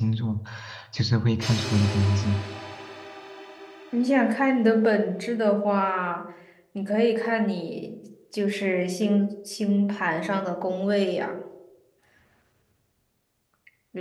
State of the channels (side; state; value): both; identical; correlation 1.00